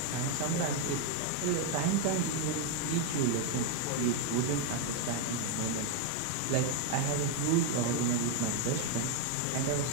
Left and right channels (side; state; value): both; different; correlation 0.01